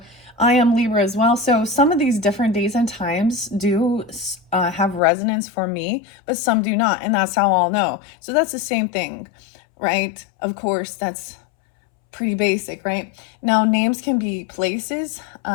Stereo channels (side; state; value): right; drops out; at 5.0 s